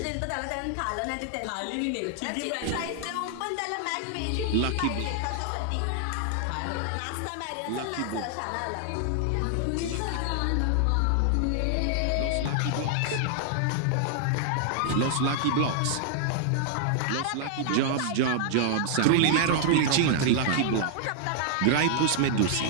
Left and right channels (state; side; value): different; both; correlation -0.01